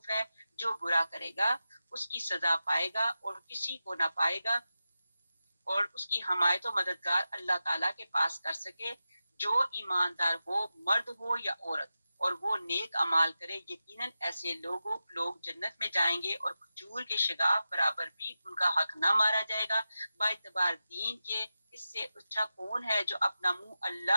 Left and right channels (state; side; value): inverted; both; correlation -0.92